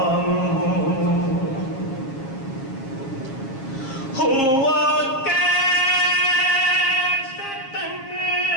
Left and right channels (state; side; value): late; right; 7.5 ms